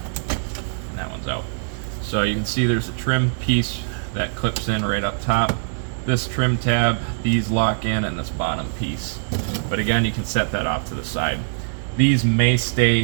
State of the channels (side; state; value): left; silent; digital silence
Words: And that one's out. So you can see there's a trim piece that clips in right up top. This trim tab, these lock in, and this bottom piece. But again, you can set that off to the side. These may